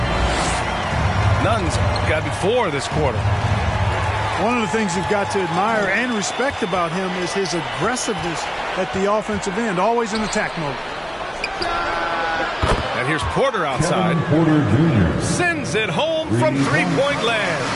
Nunn's gotten 4 this quarter. One of the things you've got to admire and respect about him is his aggressiveness at the offensive end, always in attack mode. And here's Porter outside. Porter Jr. Sends it home from three-point land.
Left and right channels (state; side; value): identical; both; correlation 1.00